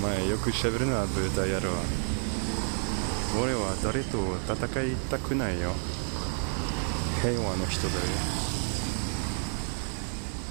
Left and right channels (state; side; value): silent; left; 58 dB below the other